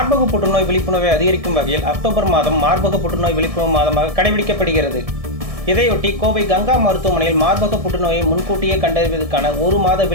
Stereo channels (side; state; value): left; late; 1.7 ms